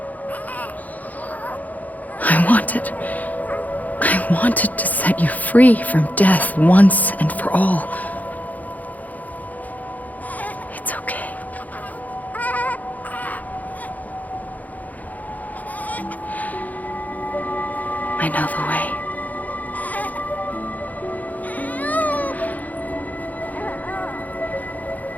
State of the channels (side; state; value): right; late; 0.079 ms